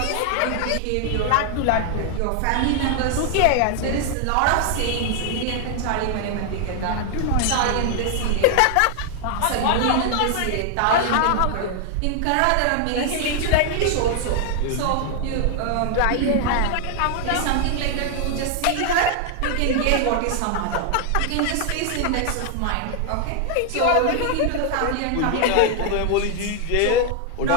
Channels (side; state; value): both; different; correlation 0.00